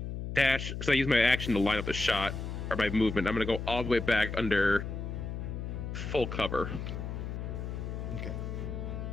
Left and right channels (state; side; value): noise; left; hum, 5 dB below the sound